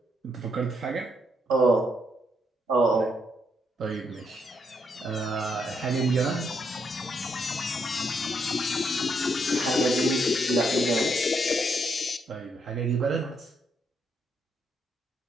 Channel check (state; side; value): normal; both; correlation 0.76